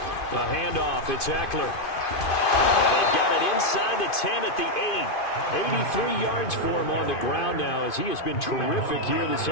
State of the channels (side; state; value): right; late; 2.5 ms